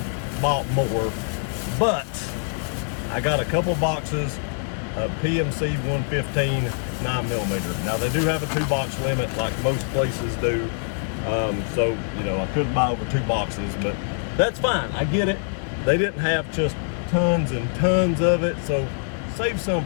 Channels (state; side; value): silent; right; digital silence